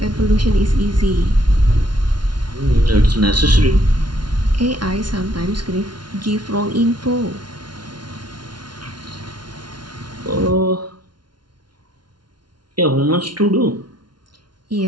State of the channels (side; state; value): left; late; 0.71 ms